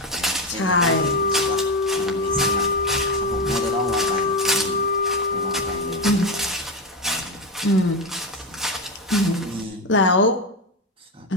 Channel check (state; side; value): normal; both; correlation 0.13